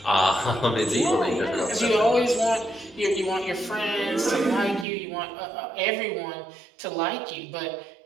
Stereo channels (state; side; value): drops out; left; at 4.9 s